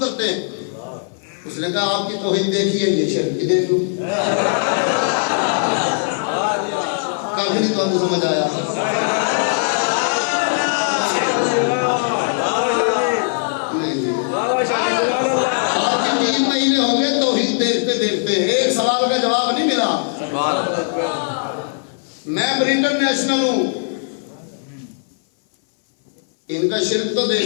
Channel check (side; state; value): right; silent; 63 dB below the other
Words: हैं। उसने कहा आपकी तौहीद देखी है, ये शिर्क की देख लो। काफी नहीं तो आपको समझ आया। आपके 3 महीने हो गए तौहीद देखते देखते, एक सवाल का जवाब नहीं मिला। मैं ब्रिटेन नेशनल हूं, इनका शिर्क तो